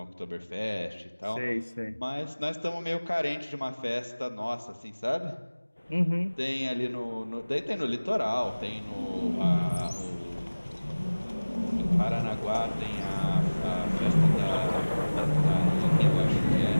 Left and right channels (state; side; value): inverted; both; correlation -1.00